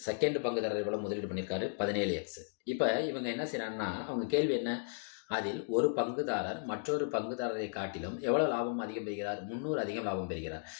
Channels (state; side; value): silent; right; digital silence